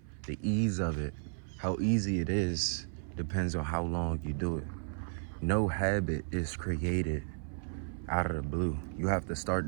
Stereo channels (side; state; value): left; silent; 55 dB below the other